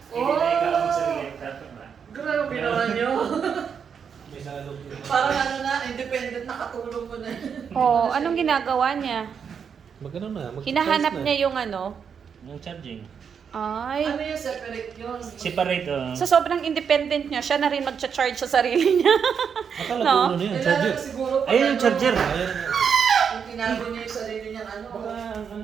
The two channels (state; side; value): quieter; left; 7.0 dB